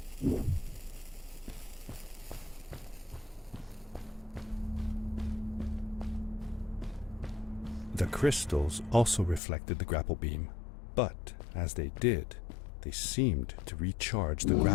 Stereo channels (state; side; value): drops out; right; at 9.4 s